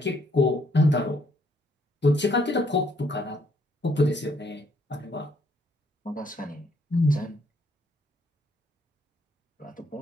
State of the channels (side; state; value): both; normal; correlation 0.69